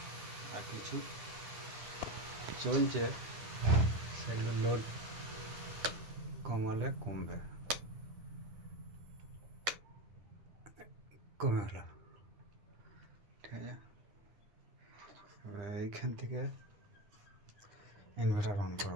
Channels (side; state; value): left; late; 9.9 ms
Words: আর কিছু চলছে, সেগুলো লোড কমালে কমবে, কমে হলো, ঠিক আছে। এবার এইখান থেকে ইনভার্টার অন